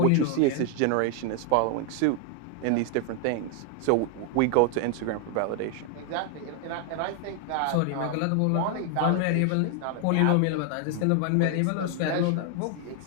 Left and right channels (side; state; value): both; different; correlation 0.00